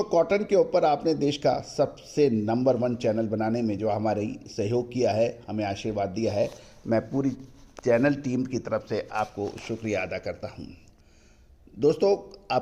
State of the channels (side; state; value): both; identical; correlation 1.00